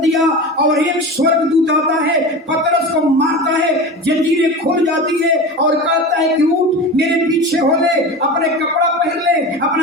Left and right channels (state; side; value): normal; both; correlation 0.29